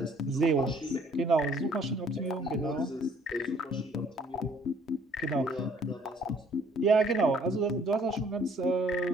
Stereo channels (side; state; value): both; normal; correlation 0.59